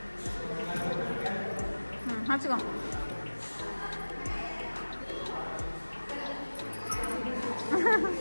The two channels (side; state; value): both; inverted; correlation -1.00